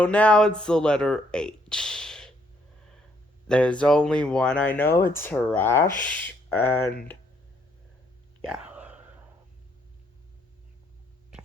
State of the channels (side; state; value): both; normal; correlation 0.70